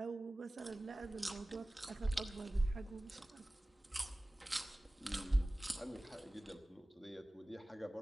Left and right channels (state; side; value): normal; both; correlation 0.97